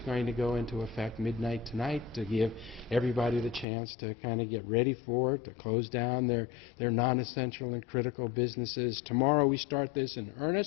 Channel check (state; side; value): drops out; right; at 3.7 s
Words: going to go into effect midnight tonight to give everybody the chance to kind of get ready for it, to close down their non-essential and critical businesses. Tomorrow we start this in